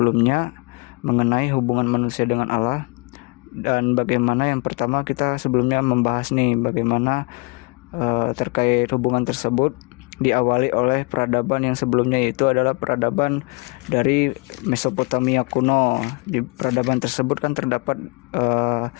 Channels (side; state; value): right; quieter; 29.8 dB